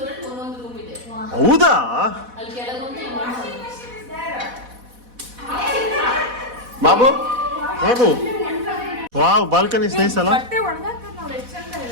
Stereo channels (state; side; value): late; left; 4.1 ms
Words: ಹೌದಾ? Babu Babu wow balcony nice ಅಲ್ಲ